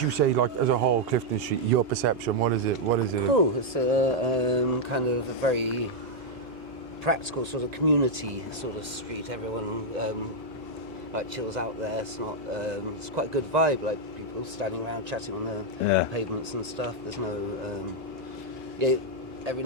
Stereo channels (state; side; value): noise; left; hum, 21 dB below the sound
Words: you say, like as a whole, Clifton Street? Your perception? What is it? What is it? Oh, it's a kind of a very practical sort of community sort of street. Everyone like chills out there. It's not. It's quite a good vibe. Like people standing around chatting on the pavements and stuff. There's no. Every